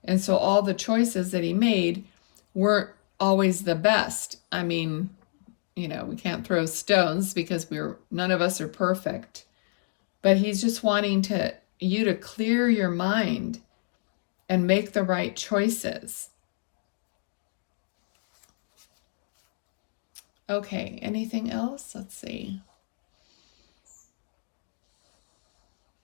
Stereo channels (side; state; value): right; silent; digital silence